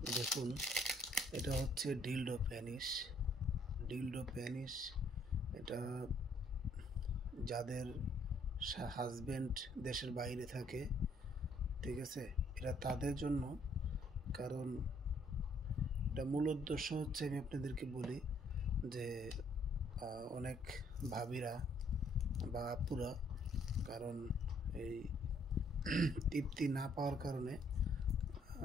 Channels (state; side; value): normal; both; correlation 0.66